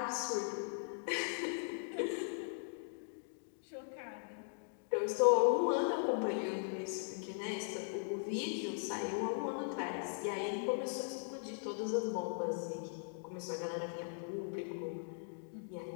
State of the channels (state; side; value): silent; right; digital silence